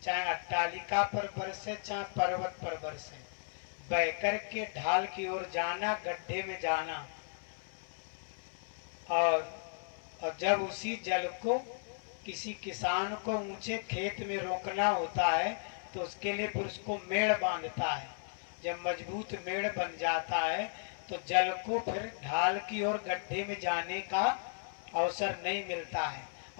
चाहे अट्टालिका पर बरसे चाहे पर्वत पर बरसे, बहकर के ढाल की ओर जाना, गड्ढे में जाना। और जब उसी जल को किसी किसान को ऊंचे खेत में रोकना होता है तो उसके लिए फिर उसको मेड़ बांधता है। जब मजबूत मेड़ बन जाता है तो जल को फिर ढाल की ओर गड्ढे में जाने का अवसर नहीं मिलता है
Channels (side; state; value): right; silent; 54 dB below the other